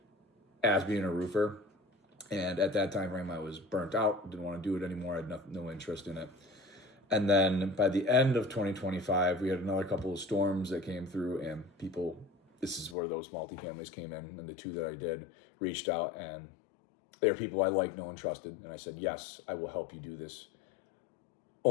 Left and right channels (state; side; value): drops out; right; at 13.0 s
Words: as being a roofer. And at that time frame, I was burnt out, didn't want to do it anymore. I had no interest in it. And then by the end of 2025, we had another couple of storms that came through, and people, this is where those multifamilies came in, and the two that I did reached out, and they were people I liked, know, and trusted. And I said, yes, I will help you do this.